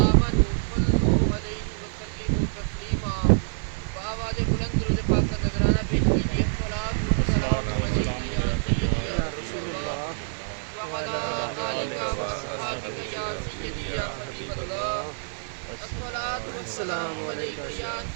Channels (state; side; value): silent; left; 61 dB below the other